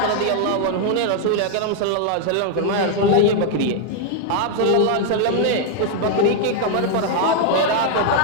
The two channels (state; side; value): different; both; correlation 0.00